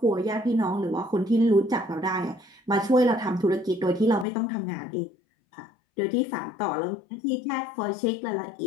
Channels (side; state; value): right; drops out; at 4.2 s